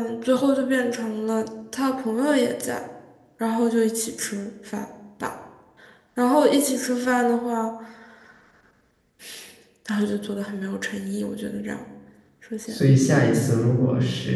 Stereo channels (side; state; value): both; identical; correlation 1.00